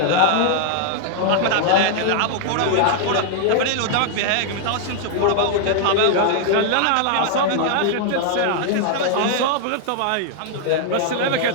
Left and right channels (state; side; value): different; both; correlation 0.00